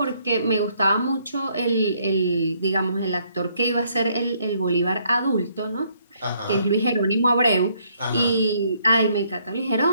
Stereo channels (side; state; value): both; inverted; correlation -0.69